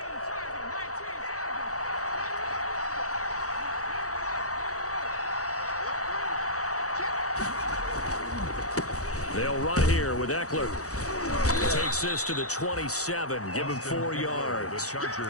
They'll run here with Eckler. Takes this to the 27. Give him 4 yards. The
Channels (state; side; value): late; right; 0.65 ms